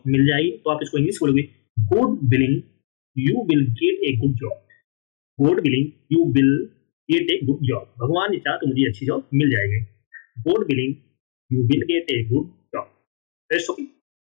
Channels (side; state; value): right; silent; digital silence